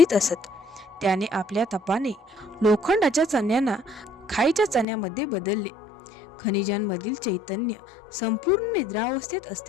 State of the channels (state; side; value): drops out; right; at 4.9 s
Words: असत. त्याने आपल्या तपाने लोखंडाच्या चण्यांना खाईच्या चण्यामध्ये बदलले. खनिजांमधील चैतन्य संपूर्ण निद्रावस्थेत